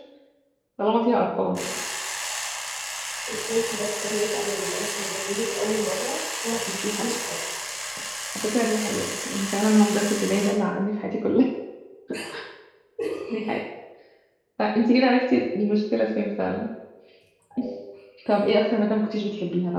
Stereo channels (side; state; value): both; identical; correlation 1.00